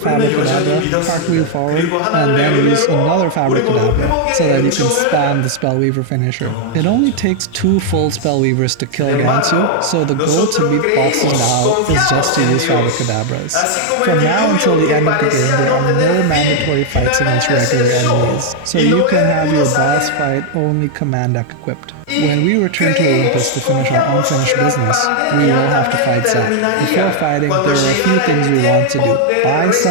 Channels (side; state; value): both; different; correlation 0.00